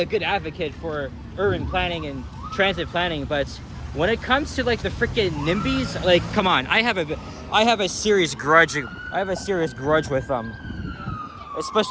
good advocate for urban planning and transit planning, but when it comes to like the freaking NIMBYs, like, come on, I have a serious grudge with them,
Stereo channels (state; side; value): identical; both; correlation 1.00